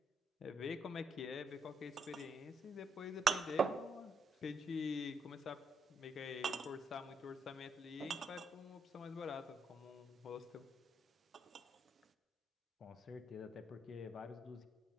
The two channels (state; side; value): normal; both; correlation 0.76